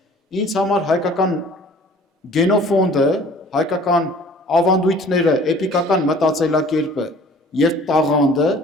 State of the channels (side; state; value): both; normal; correlation 0.50